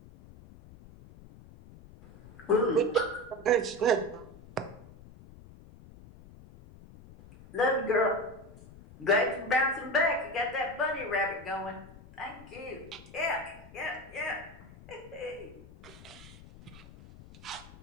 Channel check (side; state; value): left; noise; rumble, 19 dB below the sound